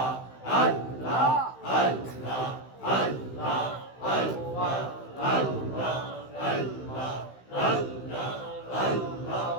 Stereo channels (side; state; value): right; late; 16 ms